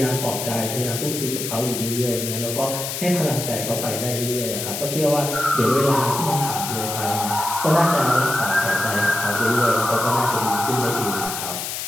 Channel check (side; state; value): left; noise; hiss, 5 dB below the sound